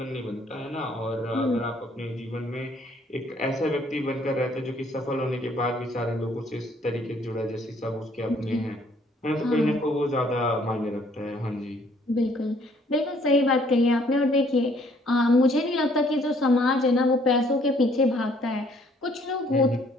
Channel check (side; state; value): both; normal; correlation 0.63